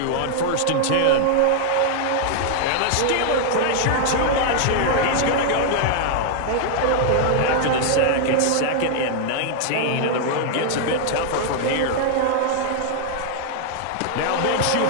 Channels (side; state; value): both; different; correlation 0.00